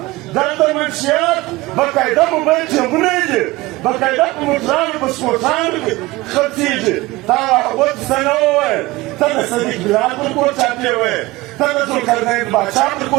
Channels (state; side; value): quieter; left; 20.2 dB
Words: دلته منشیات باقاعده موبایل جنګونه دي باقاعده په موټرانو په سپورټانو کې خرڅېږي تا هغو ته نه وویل ته د صدیق بلال پر کور چاپې وې ته د ذوالقرنین باچا پر